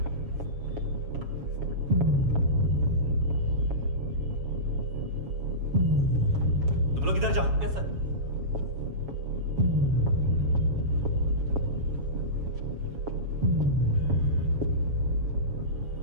तुम लोग इधर जाओ। Yes sir.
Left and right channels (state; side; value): late; left; 7.3 ms